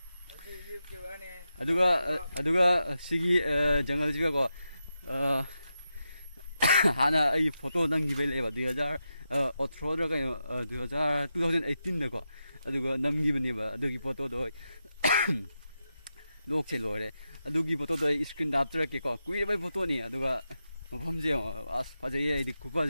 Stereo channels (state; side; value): inverted; both; correlation -0.88